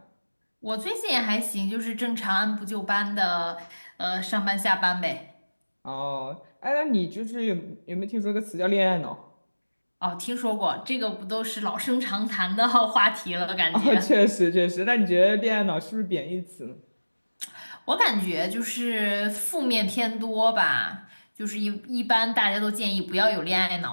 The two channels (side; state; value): both; inverted; correlation -1.00